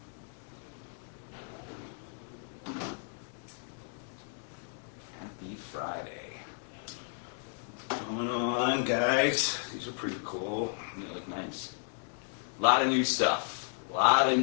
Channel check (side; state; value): right; silent; 55 dB below the other